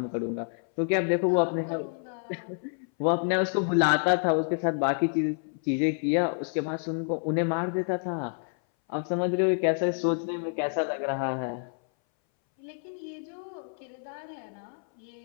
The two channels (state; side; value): silent; right; 59 dB below the other